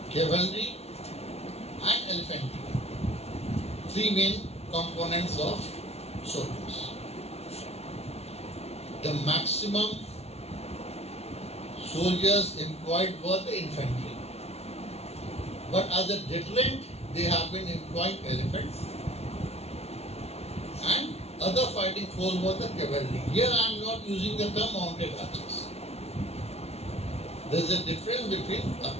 cavalry and elephantry. Three main components of soldiers. The maximum soldiers employed were the infantry. But as a deterrent, they have been employing elephants, and other fighting force was the cavalry. Here I am not using the term mounted archers. There is a difference between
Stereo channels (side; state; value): right; late; 0.31 ms